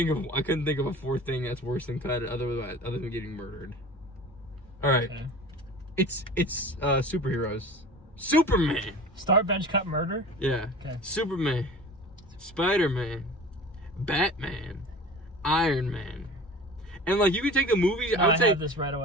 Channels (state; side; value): normal; both; correlation 0.39